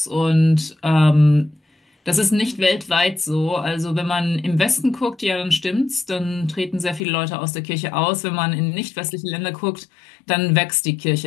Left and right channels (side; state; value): right; drops out; at 7.0 s